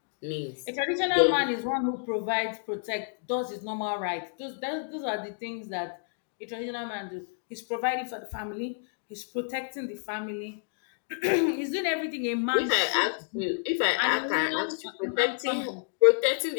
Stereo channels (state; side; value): silent; right; digital silence